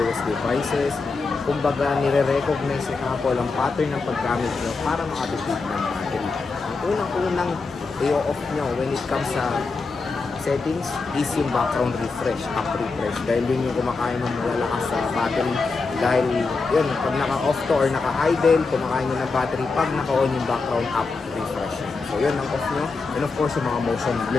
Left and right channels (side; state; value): right; quieter; 4.1 dB